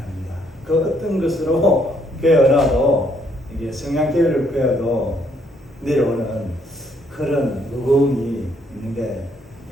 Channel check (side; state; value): both; normal; correlation 0.70